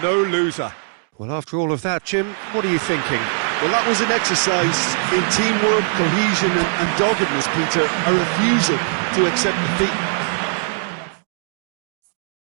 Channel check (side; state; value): left; silent; digital silence